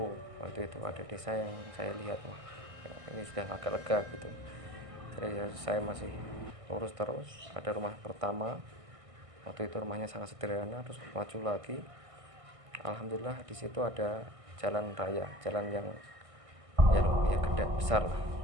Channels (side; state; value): left; late; 1.6 ms